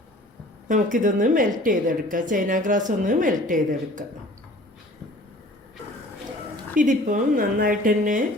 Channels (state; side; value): normal; both; correlation 0.48